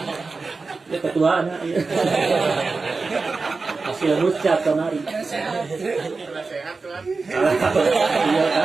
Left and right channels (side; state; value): left; quieter; 4.1 dB